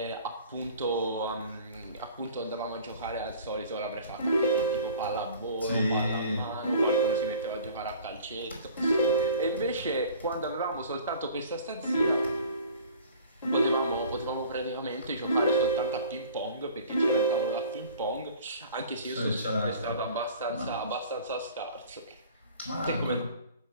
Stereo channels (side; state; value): both; inverted; correlation -0.47